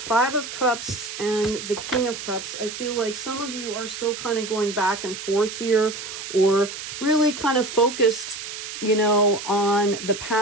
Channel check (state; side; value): noise; right; hiss, 9 dB below the sound